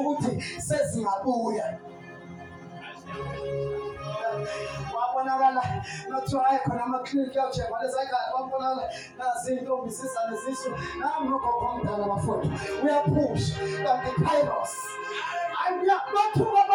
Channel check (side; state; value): both; identical; correlation 1.00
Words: sezingabuya wabonakala nothiwa hayi khona amaklinikhi yawushekwa lezayikade wabonakala nazintombi zizane zisu nami nogogo omdala bafowethu uyaphusha kanti kairos bathuka